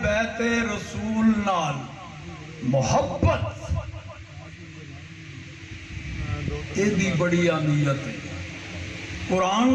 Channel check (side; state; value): both; identical; correlation 1.00